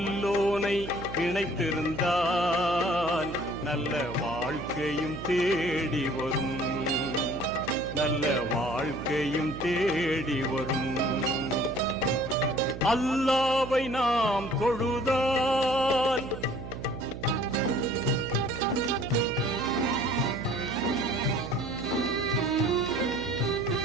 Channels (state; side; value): noise; right; hum, 10 dB below the sound